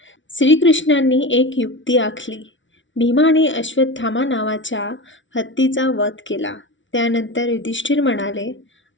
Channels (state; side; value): late; right; 0.56 ms